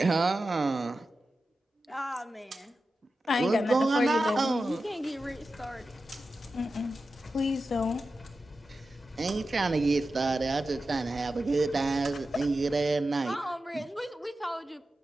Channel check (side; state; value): both; normal; correlation 0.92